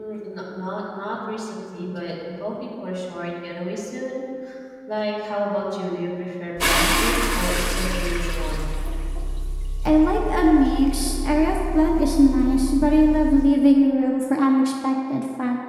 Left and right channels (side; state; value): both; identical; correlation 1.00